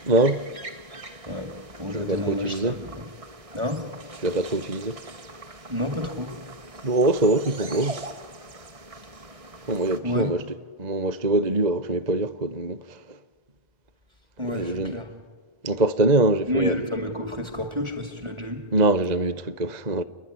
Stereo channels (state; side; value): late; left; 1.6 ms